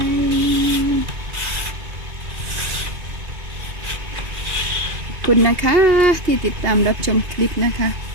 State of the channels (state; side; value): late; left; 2.5 ms